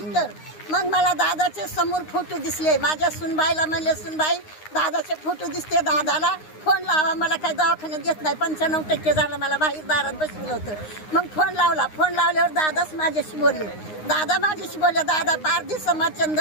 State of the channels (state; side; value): late; right; 9.7 ms